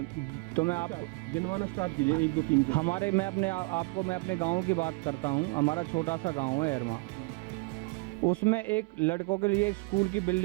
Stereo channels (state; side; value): quieter; left; 29.8 dB